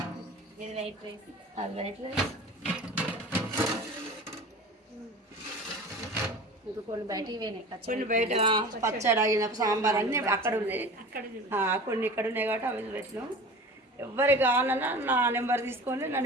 ఇది వైట్ రైస్, అది వైట్ రైస్. ఇంకా కొన్ని బయట కొన్ని బయట పచ్చడి అయిన సాంబార్ అన్నీ అక్కడ ఉన్నాయి. కొన్ని ఇక్కడ ఉన్నాయి కాబట్టి అవి పెట్టినాం. ఎవరికి కావాలన్నా నా నెంబర్ తీసుకొని నా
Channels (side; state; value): both; normal; correlation 0.37